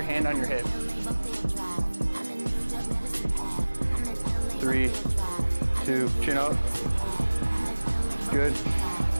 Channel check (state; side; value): inverted; both; correlation -1.00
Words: hand on your hip. 3, 2, chin up. Good.